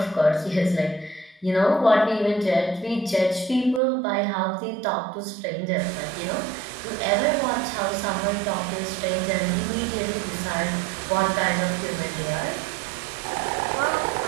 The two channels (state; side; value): drops out; left; at 3.8 s